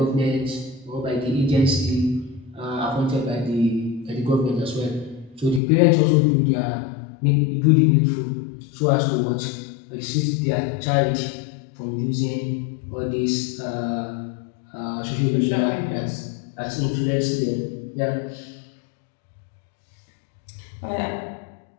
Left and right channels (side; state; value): right; drops out; at 5.6 s